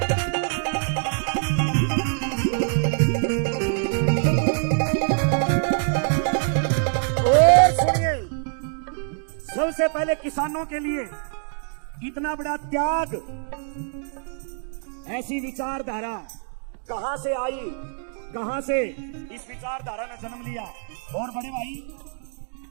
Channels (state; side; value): silent; left; 62 dB below the other